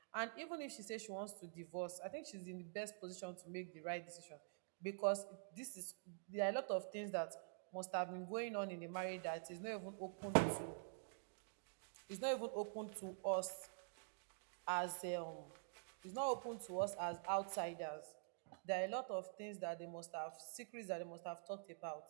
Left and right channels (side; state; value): left; silent; digital silence